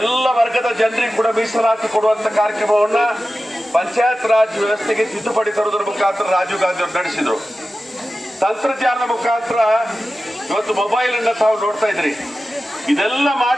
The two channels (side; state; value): both; normal; correlation 0.94